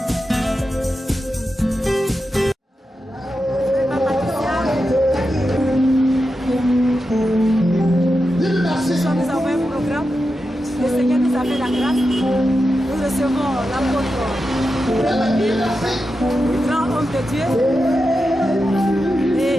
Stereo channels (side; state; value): both; normal; correlation 0.89